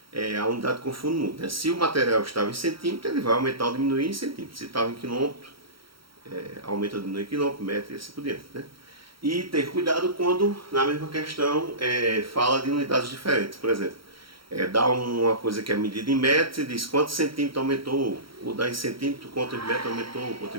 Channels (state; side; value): late; left; 0.74 ms